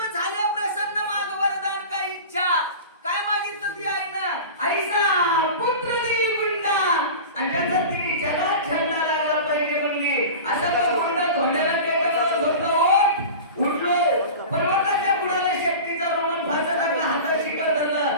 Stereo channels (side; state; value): both; inverted; correlation -0.33